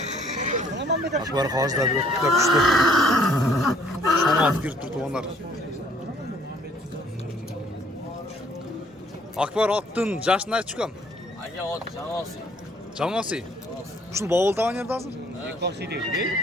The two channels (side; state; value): both; normal; correlation 0.61